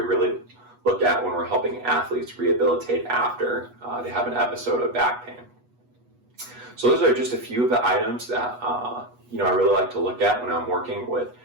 really look at when we're helping athletes rehabilitate after they have an episode of back pain. So those are just a few of the items that I really like to look at when I'm working with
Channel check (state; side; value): late; left; 8.2 ms